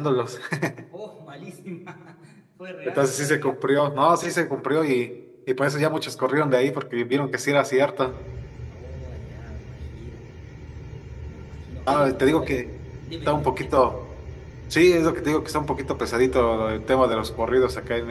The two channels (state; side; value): identical; both; correlation 1.00